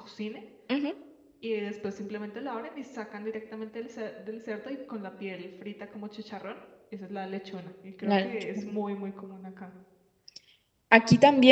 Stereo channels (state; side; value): identical; both; correlation 1.00